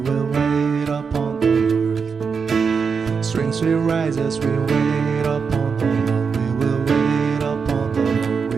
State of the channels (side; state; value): left; quieter; 5.7 dB